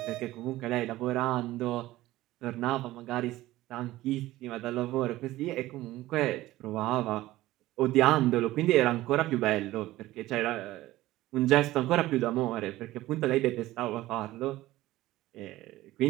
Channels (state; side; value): quieter; left; 16.6 dB